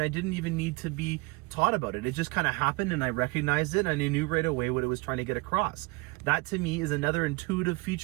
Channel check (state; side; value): quieter; left; 25.7 dB